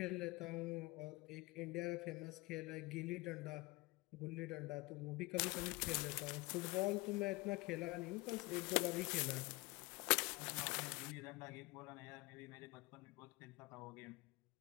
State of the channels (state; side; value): quieter; right; 23.2 dB